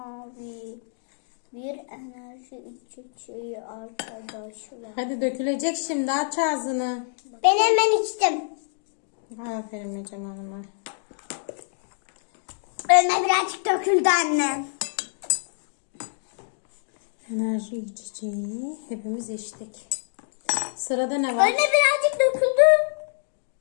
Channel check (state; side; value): silent; right; digital silence